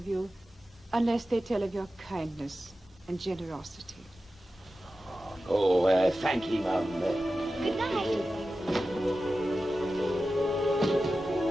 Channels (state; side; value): normal; both; correlation 0.93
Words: you unless they tell of your kindness and generosity. Oh, thank you, Mum. Good night.